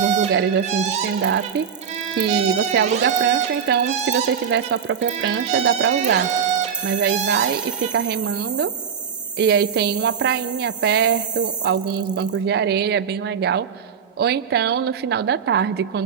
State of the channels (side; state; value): left; quieter; 7.3 dB